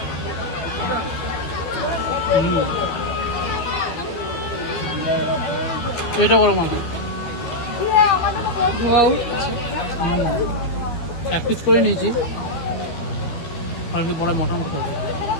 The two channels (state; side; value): late; right; 13 ms